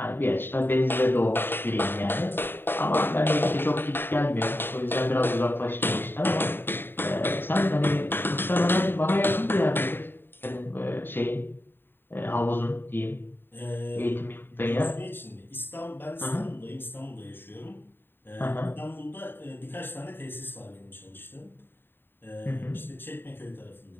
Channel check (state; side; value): late; right; 0.099 ms